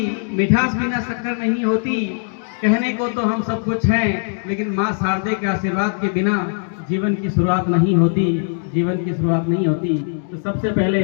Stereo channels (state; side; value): silent; right; 62 dB below the other